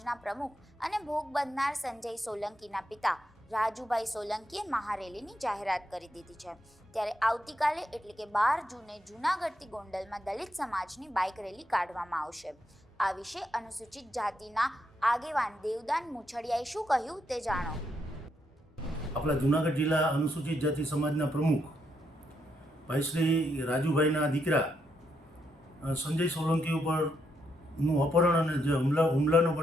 પ્રમુખ અને ભોગ બનનાર સંજય સોલંકીના પિતા રાજુભાઈ સોલંકીએ મહારેલીની જાહેરાત કરી દીધી છે. ત્યારે આવતીકાલે એટલે કે 12 જૂને જૂનાગઢથી ગોંડલમાં દલિત સમાજની બાઇક રેલી કાઢવામાં આવશે. આ વિશે અનુસૂચિત જાતિના આગેવાન દેવદાન મુછડિયાએ શું કહ્યું તે જાણો. આપણા જૂનાગઢ જિલ્લા અનુસૂચિત જાતિ સમાજના પ્રમુખ ભાઈ શ્રી રાજુભાઈના દીકરા સંજય સોલંકી ઉપરનું અપહરણ અને જે હુમલાનો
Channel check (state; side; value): normal; both; correlation 0.79